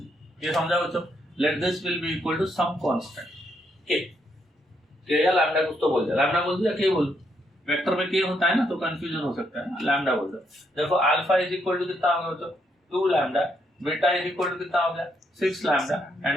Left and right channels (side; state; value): both; normal; correlation 0.76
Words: ये समझा बच्चों? Let this will be equal to some constant K या लैम्डा कुछ तो बोल दे, लैम्डा बोल दिया के बोल, वेक्टर में के होता है ना तो कंफ्यूजन हो सकता है ना, लैम्डा बोल दो। देखो अल्फा इज इक्वल टू कितना हो गया बच्चों? 2 lambda, beta is equal to कितना हो गया? 6 lambda